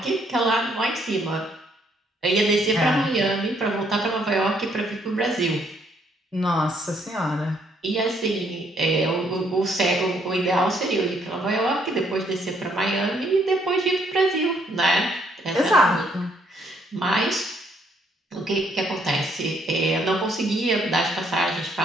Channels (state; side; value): normal; both; correlation 0.69